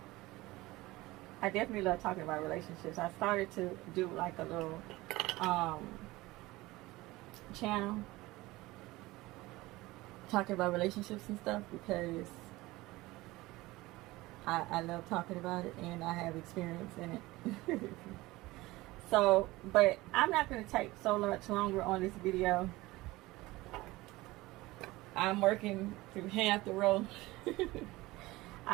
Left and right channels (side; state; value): left; quieter; 19.7 dB